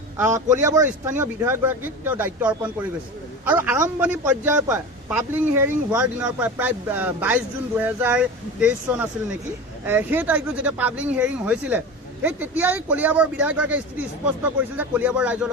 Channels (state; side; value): normal; both; correlation 0.29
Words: কলিয়াবৰৰ স্থানীয় বিধায়কগৰাকীক তেওঁ দায়িত্ব অৰ্পণ কৰি গৈছে। আৰু আৰম্ভণি পৰ্যায়ৰ পৰা পাব্লিক হিয়াৰিং হোৱাৰ দিনৰ পৰা প্ৰায় 22 জুন 2023 চন আছিল নেকি, সেই তাৰিখটো যেতিয়া পাব্লিক হিয়াৰিং হৈছিলে সেই তেতিয়াই কলিয়াবৰ বিধায়কগৰাকীয়ে স্থিতি স্পষ্ট কৰিছিল যে কলিয়াবৰ ৰাইজৰ